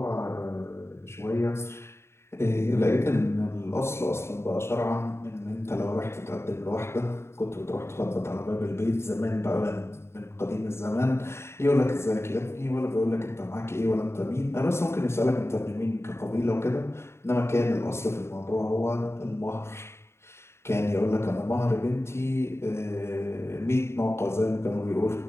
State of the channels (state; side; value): late; right; 0.13 ms